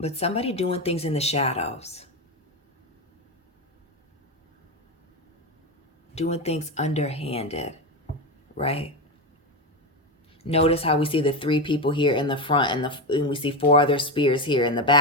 somebody doing things in the shadows. Doing things underhanded, right? Notice how we see the 3 people here in the front and we see 4 other spears here in the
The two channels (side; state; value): both; normal; correlation 0.14